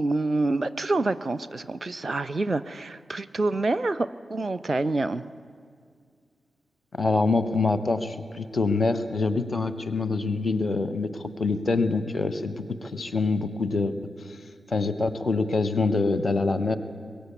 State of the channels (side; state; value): both; normal; correlation 0.85